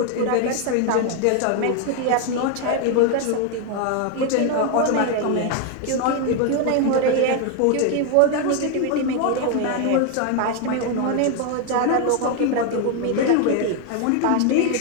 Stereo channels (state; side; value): different; both; correlation 0.01